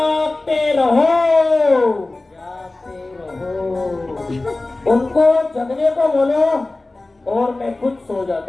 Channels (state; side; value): quieter; right; 3.0 dB